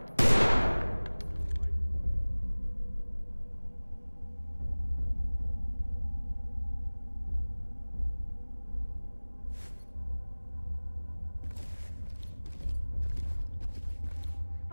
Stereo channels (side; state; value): both; inverted; correlation -1.00